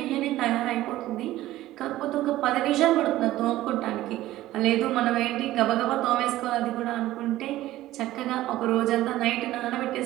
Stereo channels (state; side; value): quieter; left; 15.5 dB